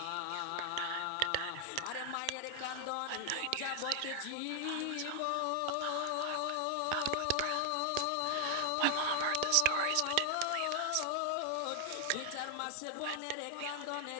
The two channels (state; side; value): different; both; correlation 0.00